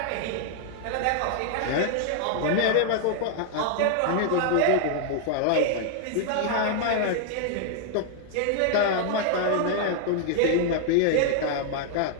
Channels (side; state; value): both; different; correlation 0.00